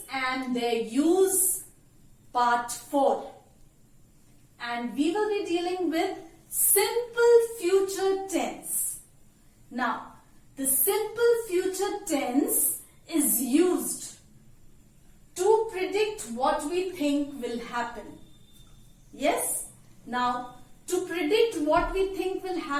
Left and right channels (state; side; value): identical; both; correlation 1.00